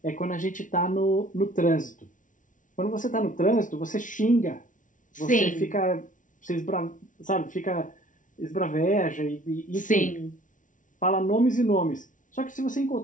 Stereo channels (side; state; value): right; late; 0.37 ms